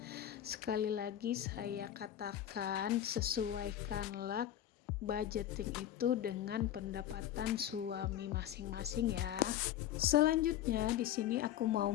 Sekali lagi saya katakan, sesuaikanlah budgeting itu dengan pendapatan suami masing-masing ya. Selanjutnya di sini aku mau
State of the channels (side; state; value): right; quieter; 11.5 dB